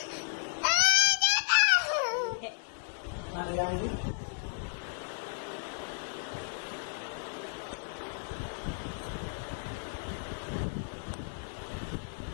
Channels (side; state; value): right; silent; digital silence